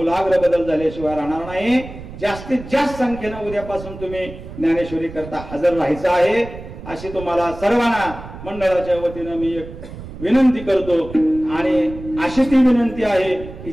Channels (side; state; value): right; noise; rumble, 13 dB below the sound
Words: बदल झाल्याशिवाय राहणार नाही. जास्तीत जास्त संख्येनं उद्यापासून तुम्ही ज्ञानेश्वरी करता हजर राहायचं आहे, अशी तुम्हाला सर्वांना मंडळाच्या वतीनं मी एक विनंती करतो. आणि अशी ती विनंती आहे की